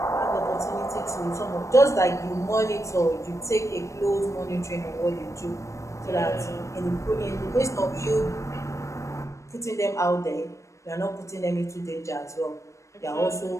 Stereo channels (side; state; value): right; late; 0.15 ms